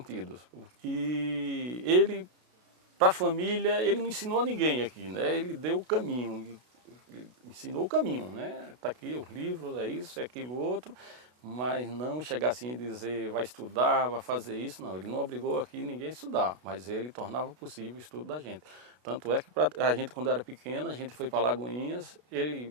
E ele, para a família, ele não ensinou a ninguém aqui, né? Ele deu o caminho, ensinou o caminho, né? Está aqui os livros, é isso, é aquilo outro, mas não chegar assim e dizer vai estudar, vai fazer isso, não. Ele não obrigou aqui ninguém a estudar, mas ele tornava possível o estudo da gente. Tanto é que a gente, quando era pequena, a gente foi para Lagoinhas,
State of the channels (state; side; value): late; left; 32 ms